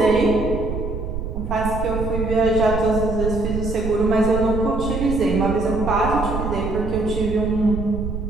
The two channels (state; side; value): noise; right; rumble, 5 dB below the sound